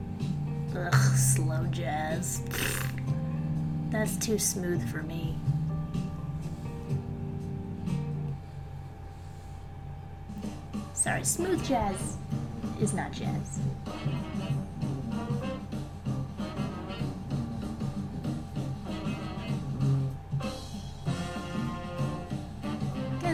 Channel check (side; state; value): both; identical; correlation 1.00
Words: Ugh, slow jazz. That's too smooth for me. Sorry, smooth jazz is not jazz.